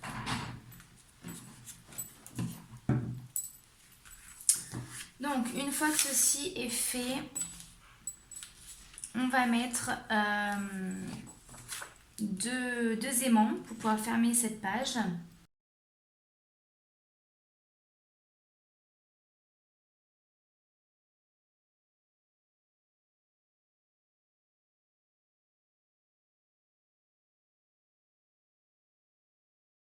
Donc, une fois que ceci est fait, on va mettre deux aimants pour pouvoir fermer cette page.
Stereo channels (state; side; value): identical; both; correlation 1.00